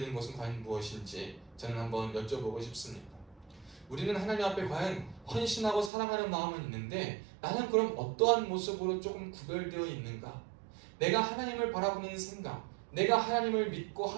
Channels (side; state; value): left; drops out; at 5.9 s